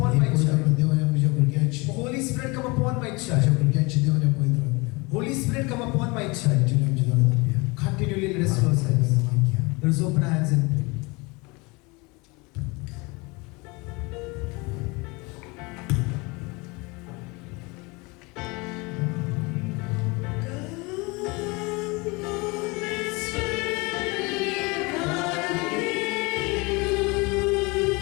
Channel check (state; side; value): quieter; right; 26.5 dB